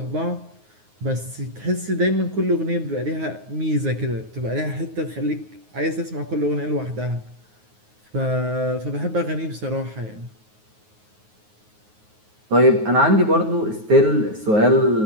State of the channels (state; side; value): late; left; 9.4 ms